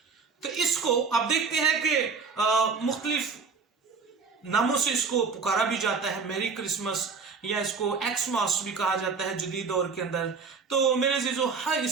तो इसको आप देखते हैं कि मुख्तलिफ नामों से इसको पुकारा भी जाता है, मैरी क्रिसमस या इसको एक्समास भी कहा जाता है जदीद दौर के अंदर। तो मेरे अजीजों, हर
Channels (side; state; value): left; quieter; 5.0 dB